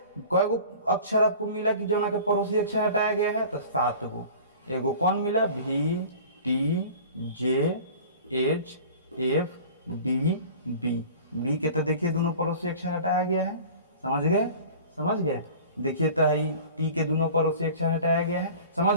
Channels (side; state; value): both; inverted; correlation -0.42